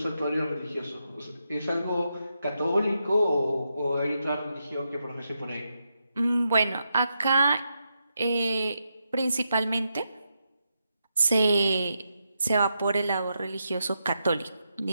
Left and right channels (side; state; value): both; inverted; correlation -0.84